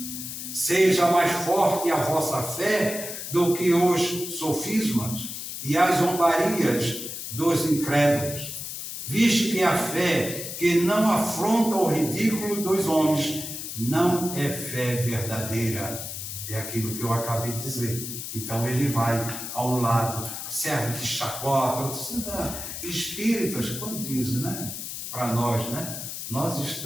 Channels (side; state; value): left; noise; hiss, 7 dB below the sound